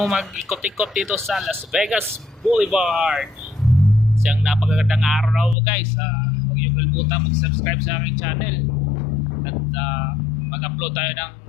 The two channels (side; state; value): right; drops out; at 5.6 s